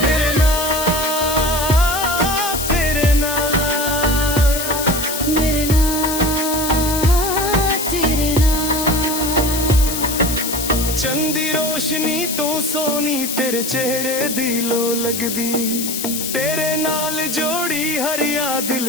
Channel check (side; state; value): left; noise; hiss, 4 dB below the sound